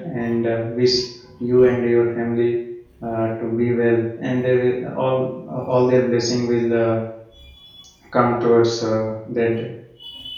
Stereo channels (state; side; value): identical; both; correlation 1.00